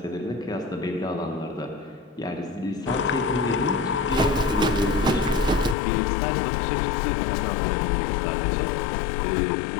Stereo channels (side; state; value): right; drops out; at 5.8 s